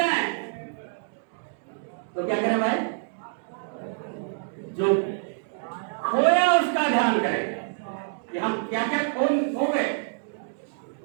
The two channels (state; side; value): silent; left; digital silence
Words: तो क्या करें भाई, जो खोया उसका ध्यान करें कि हम क्या क्या खो गए।